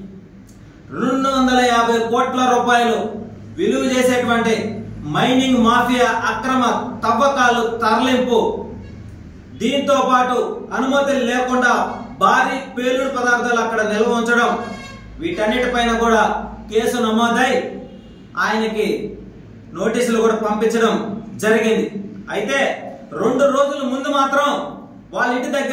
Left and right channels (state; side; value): identical; both; correlation 1.00